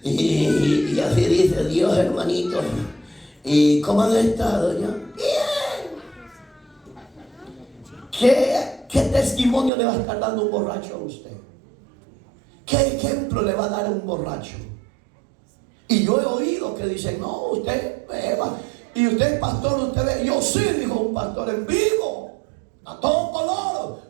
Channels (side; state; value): left; drops out; at 9.7 s